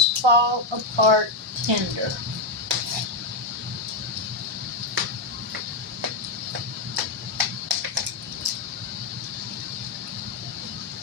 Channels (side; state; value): right; quieter; 3.3 dB